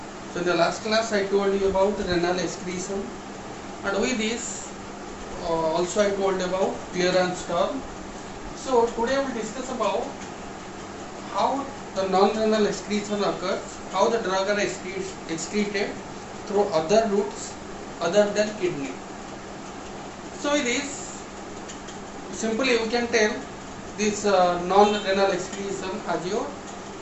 So in the last class I told you about renal excretion, and with this also I told about clearance term. So today we will discuss about how the non-renal excretion occurs, how the drug are excreted through other routes other than kidney. So with this, simply we can tell this non-renal excretion as your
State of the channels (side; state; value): both; identical; correlation 1.00